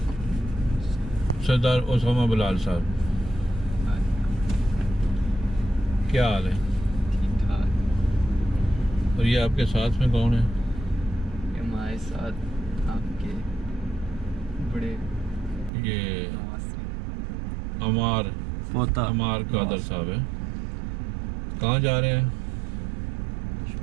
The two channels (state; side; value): drops out; left; at 15.7 s